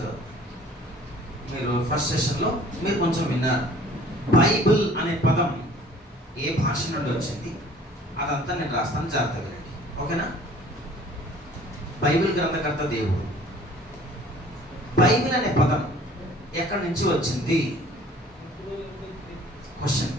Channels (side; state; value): both; normal; correlation 0.52